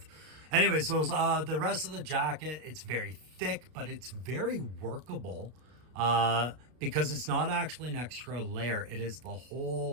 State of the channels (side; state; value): left; late; 32 ms